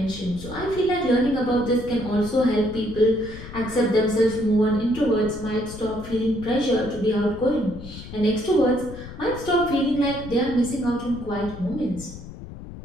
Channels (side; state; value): left; noise; rumble, 13 dB below the sound